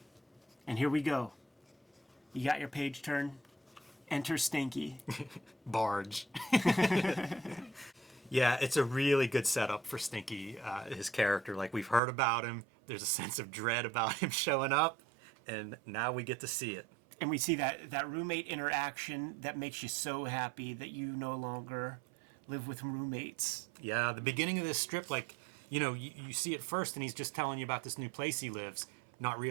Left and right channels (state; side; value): drops out; left; at 12.0 s